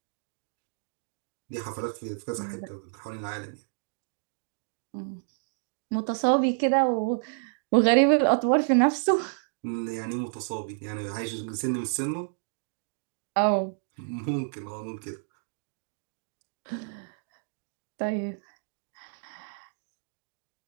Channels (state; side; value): silent; left; digital silence